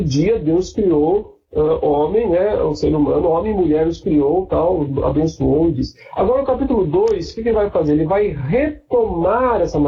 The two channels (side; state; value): both; identical; correlation 1.00